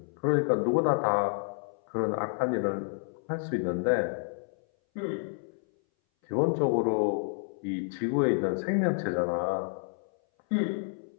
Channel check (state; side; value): silent; right; 58 dB below the other